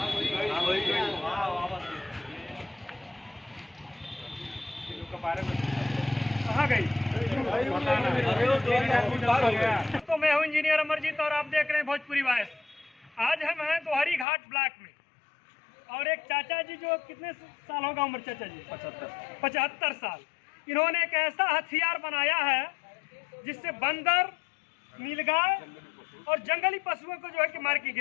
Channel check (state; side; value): drops out; right; at 14.2 s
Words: कहाँ गई? तो मैं हूँ इंजीनियर अमरजीत और आप देख रहे हैं भोजपुरी वॉइस। आज हम हैं दोहरी घाट ब्लॉक में और एक चाचा जी जो कितने साल होगा उम्र चाचा जी? 75 साल। इन्होंने एक ऐसा हथियार बनाया है जिससे बंदर, नीलगाय और जंगली पशुओं को जो है कि मार के